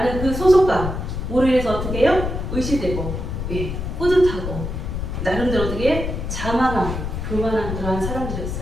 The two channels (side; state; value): left; noise; rumble, 4 dB below the sound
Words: 그 소속감으로 인해서 어떻게 해요? 의시되고 뿌듯하고 나름대로 어떻게 자만하고 교만한 그러한